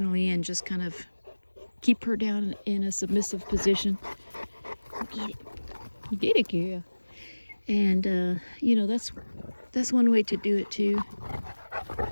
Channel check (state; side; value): inverted; both; correlation -1.00